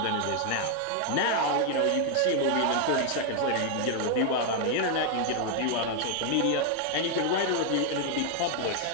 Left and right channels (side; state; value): both; different; correlation 0.00